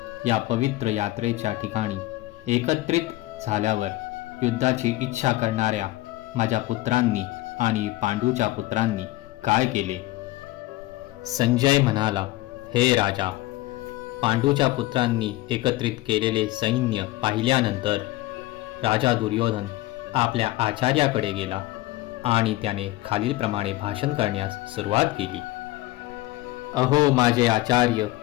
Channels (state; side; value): quieter; right; 17.9 dB